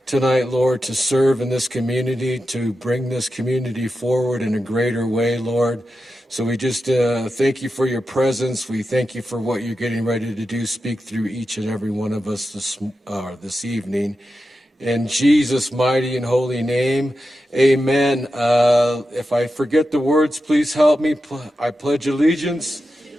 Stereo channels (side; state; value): both; normal; correlation 0.90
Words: tonight, Lord, to serve in this community, to bring this community forward in a greater way, Lord. So we just thank you for your presence. We thank you for what you're getting ready to do. Speak through each and every one of us this evening. In Jesus' mighty and holy name, amen. If I forget the words, please help me. I pledge allegiance